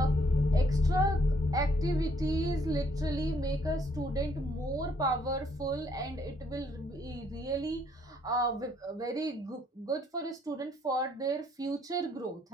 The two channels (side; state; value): both; normal; correlation 0.68